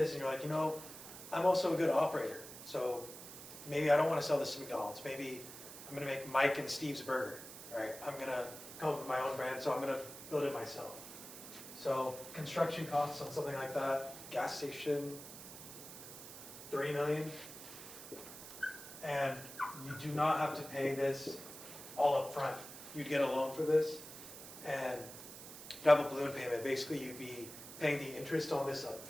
and you're like, I'm also a good operator, so maybe I don't want to sell this to McDonald's. Maybe I'm going to make Mike and Steve's burger, right? I'm going to come up with my own brand, so I'm going to build it myself. So construction costs on something like that, gas station, $3 million. And you do not have to pay this all up front. You'd get a loan for this, and you'd have a balloon payment. Basically, you'd be paying the interest on this up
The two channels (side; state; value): right; noise; hiss, 13 dB below the sound